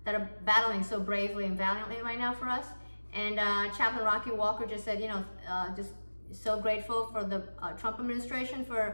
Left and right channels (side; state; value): both; inverted; correlation -1.00